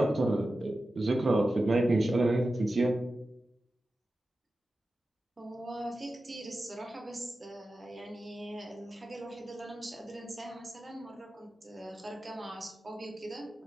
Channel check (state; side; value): normal; both; correlation 0.93